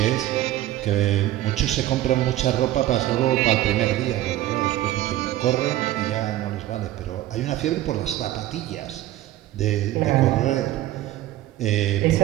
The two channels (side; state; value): left; quieter; 14.5 dB